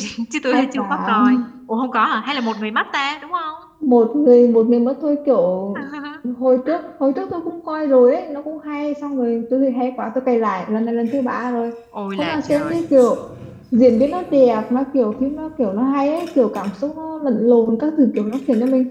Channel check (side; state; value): both; identical; correlation 1.00